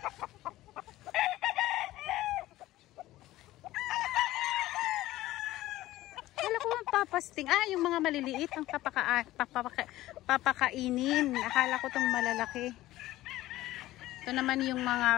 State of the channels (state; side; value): quieter; right; 16.1 dB